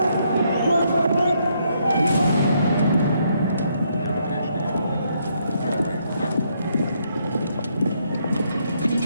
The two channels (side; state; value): both; inverted; correlation -0.74